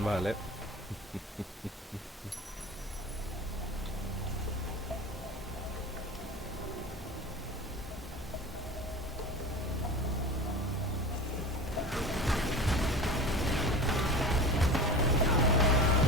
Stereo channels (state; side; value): normal; both; correlation 0.34